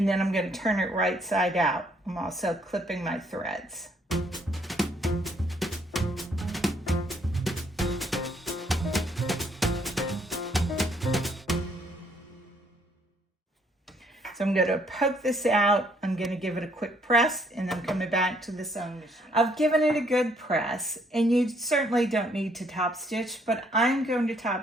then I'm going to turn it right side out. I'm also clipping my threads. So I'm I'm going to poke this out. I'm going to give it a quick press, and I'm coming back to the sewing machine. I've given it a good press, and you certainly don't need to top stitch, but I'm going to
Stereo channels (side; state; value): both; normal; correlation 0.67